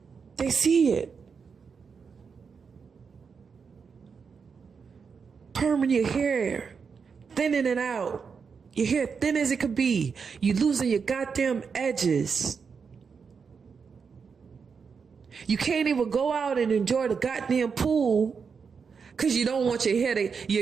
They see it. Perming your hair, thinning it out. Your hair thin as it could be. You losing your goddamn edges. You can't even go out and enjoy the goddamn pool because you don't want your hair to,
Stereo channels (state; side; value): quieter; left; 5.8 dB